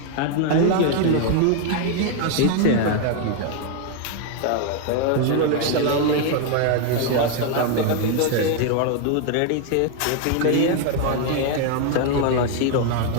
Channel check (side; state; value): both; different; correlation 0.00